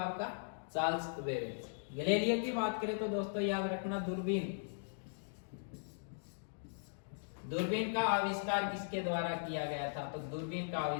आपका? Charles Babbage. गैलीलियो की बात करें तो दोस्तों याद रखना दूरबीन का आविष्कार किसके द्वारा किया गया था? तो दूरबीन का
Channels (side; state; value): right; silent; digital silence